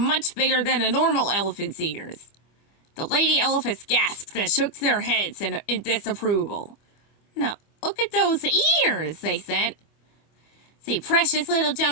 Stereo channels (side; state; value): right; late; 25 ms